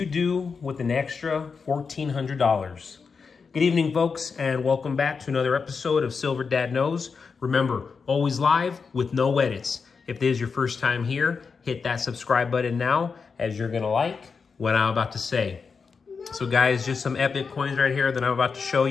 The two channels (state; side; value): quieter; right; 5.3 dB